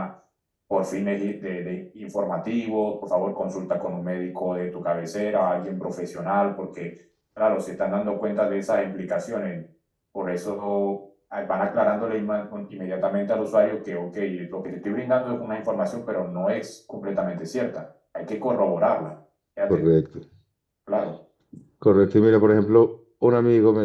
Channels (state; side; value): identical; both; correlation 1.00